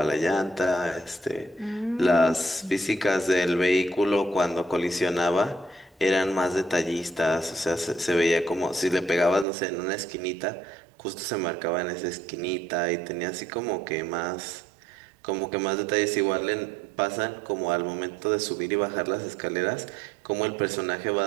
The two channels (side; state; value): left; drops out; at 9.5 s